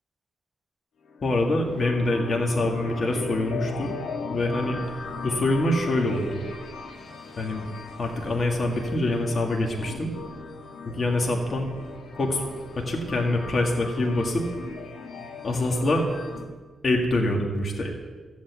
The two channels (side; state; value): both; normal; correlation 0.84